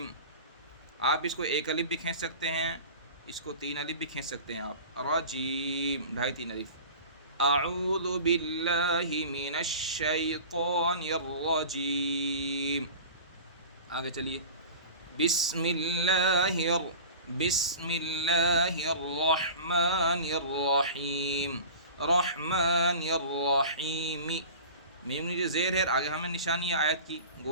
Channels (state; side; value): inverted; both; correlation -0.37